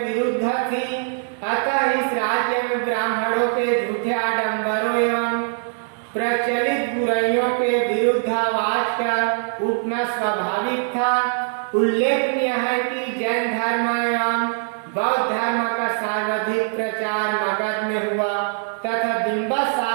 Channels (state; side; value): silent; left; digital silence